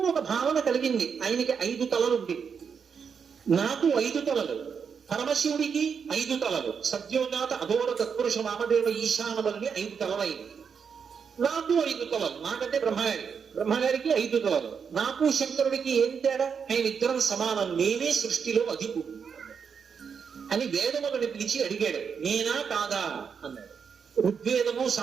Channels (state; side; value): quieter; left; 6.5 dB